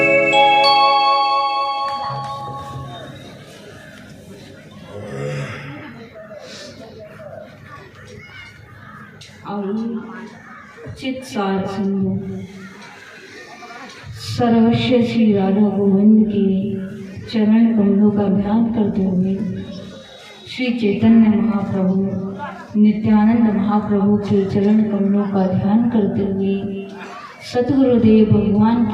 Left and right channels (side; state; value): both; identical; correlation 1.00